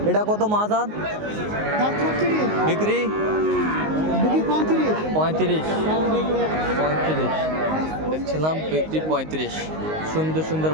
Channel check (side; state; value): left; late; 19 ms